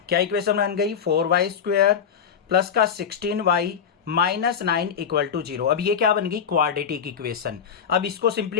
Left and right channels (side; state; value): right; quieter; 7.4 dB